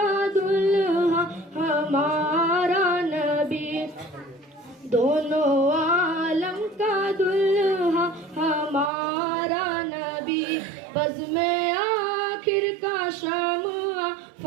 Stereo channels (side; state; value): left; drops out; at 8.9 s